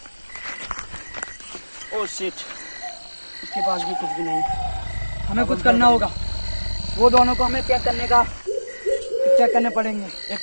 ओह शिट, इसके पास भी कुछ भी नहीं। हमें कुछ करना होगा। वो दोनों को हमें चेक करने पड़ेंगे। एक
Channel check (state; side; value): inverted; both; correlation -1.00